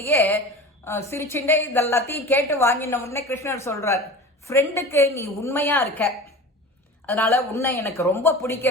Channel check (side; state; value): both; normal; correlation 0.35